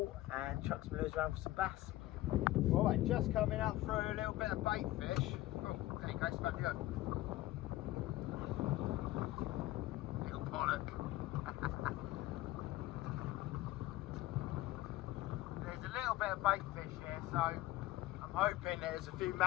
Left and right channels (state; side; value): quieter; right; 16.7 dB